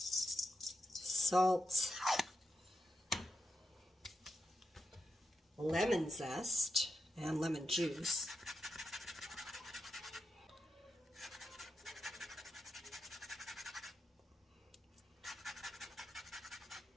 Salt. Lemon zest and lemon juice.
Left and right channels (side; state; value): both; normal; correlation 0.88